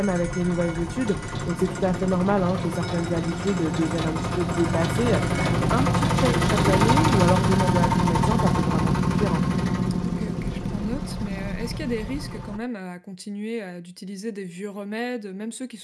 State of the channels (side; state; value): both; identical; correlation 1.00